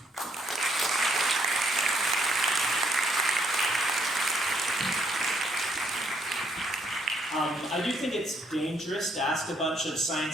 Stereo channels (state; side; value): normal; both; correlation 0.70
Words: I do think it's dangerous to ask a bunch of